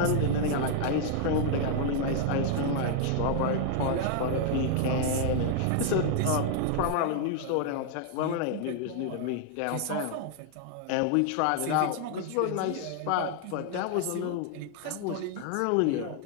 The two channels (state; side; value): different; both; correlation 0.00